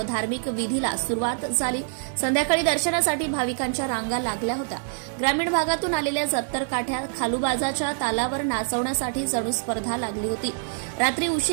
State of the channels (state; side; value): silent; left; 61 dB below the other